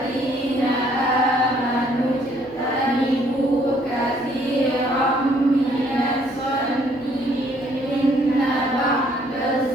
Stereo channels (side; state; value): both; normal; correlation 0.64